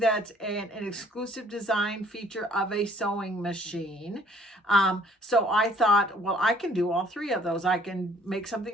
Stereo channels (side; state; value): both; normal; correlation 0.58